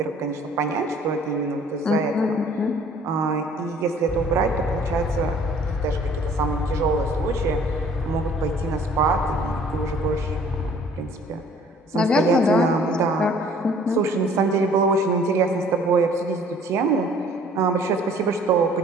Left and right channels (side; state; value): both; normal; correlation 0.55